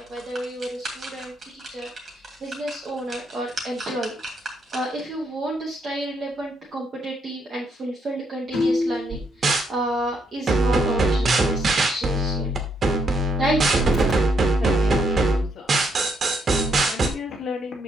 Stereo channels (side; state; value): both; normal; correlation 0.75